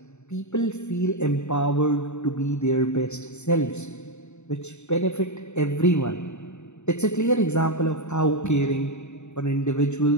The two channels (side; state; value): right; late; 0.82 ms